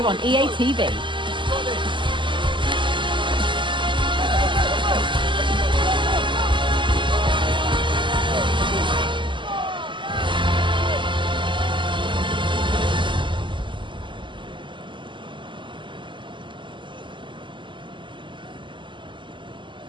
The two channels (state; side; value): late; left; 0.24 ms